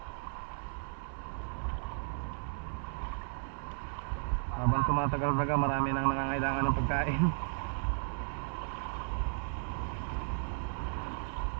Habang tumatagal-tagal, marami nang nangangailangan ng pagkain.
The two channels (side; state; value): left; silent; digital silence